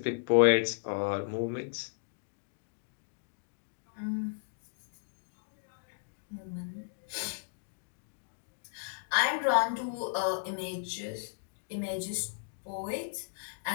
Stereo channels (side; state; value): right; silent; digital silence